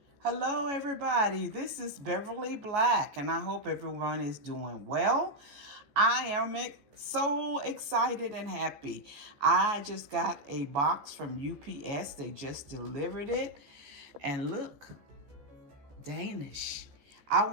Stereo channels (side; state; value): left; late; 14 ms